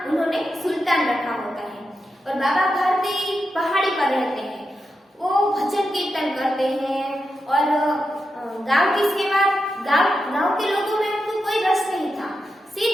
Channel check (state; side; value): normal; both; correlation 0.87